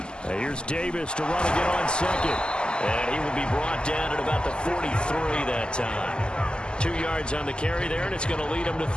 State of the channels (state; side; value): late; right; 0.048 ms